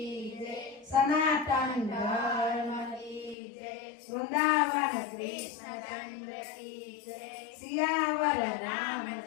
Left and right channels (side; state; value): right; drops out; at 3.4 s